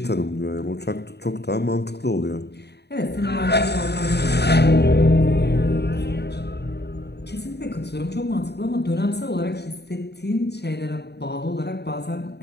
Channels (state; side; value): late; right; 0.48 ms